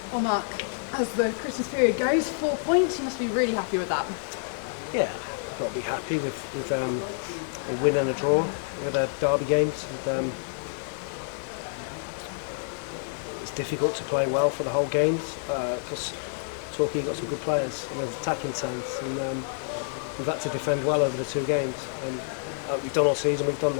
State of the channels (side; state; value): right; silent; 59 dB below the other